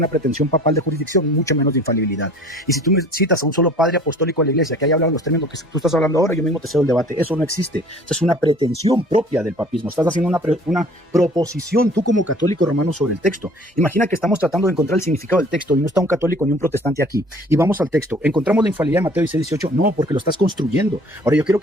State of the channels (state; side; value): normal; both; correlation 0.51